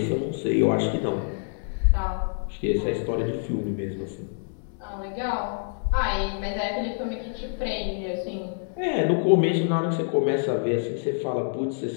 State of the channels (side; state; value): right; silent; digital silence